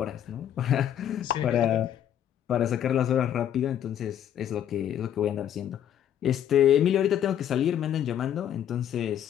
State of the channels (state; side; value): quieter; right; 10.2 dB